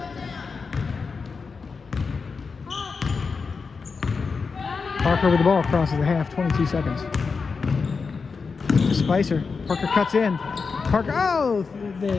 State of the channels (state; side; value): quieter; right; 5.0 dB